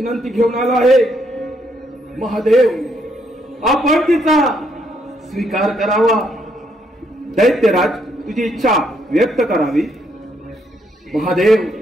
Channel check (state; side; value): normal; both; correlation 0.73